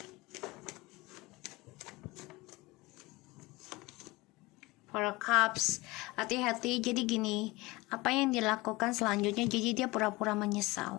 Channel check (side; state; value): right; quieter; 21.9 dB